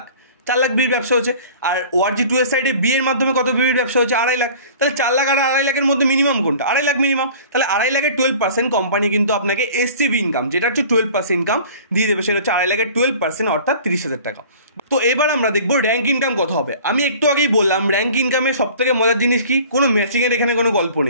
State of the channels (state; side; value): inverted; both; correlation -0.45